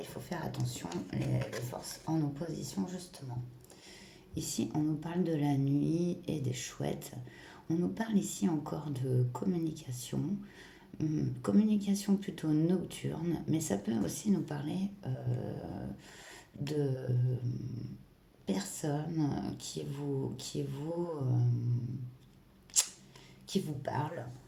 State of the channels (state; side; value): identical; both; correlation 1.00